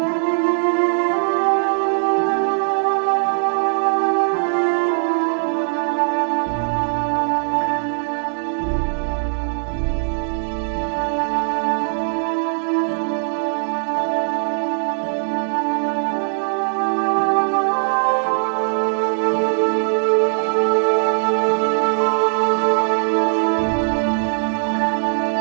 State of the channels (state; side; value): silent; left; digital silence